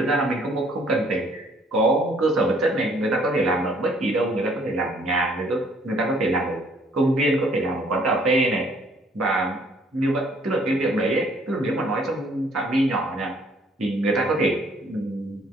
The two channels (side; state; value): both; normal; correlation 0.62